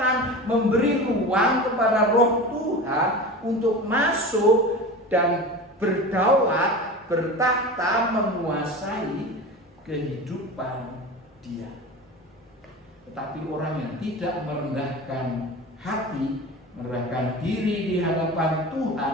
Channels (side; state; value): both; normal; correlation 0.31